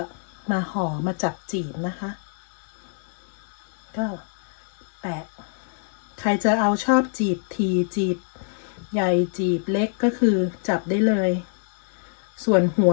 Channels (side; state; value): right; silent; 57 dB below the other